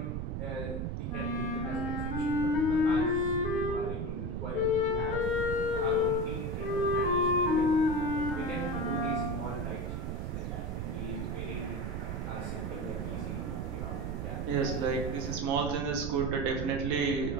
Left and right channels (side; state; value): right; noise; rumble, 3 dB below the sound